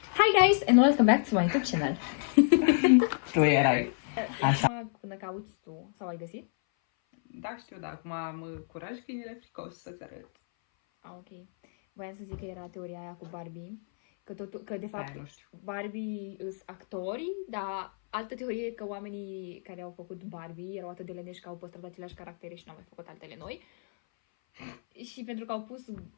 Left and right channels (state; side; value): silent; right; 57 dB below the other